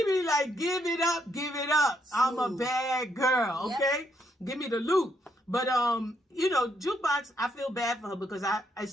be like, give it up. I'm a bad girl, okay? Give me the loot. But Jukebox, I feel bad for her because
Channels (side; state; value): both; normal; correlation 0.75